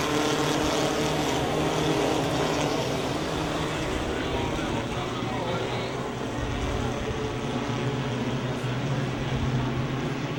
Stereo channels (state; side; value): identical; both; correlation 1.00